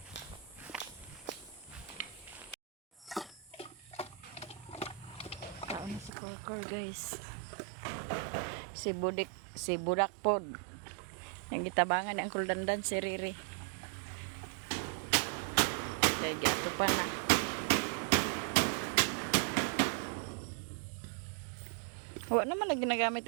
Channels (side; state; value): left; drops out; at 6.1 s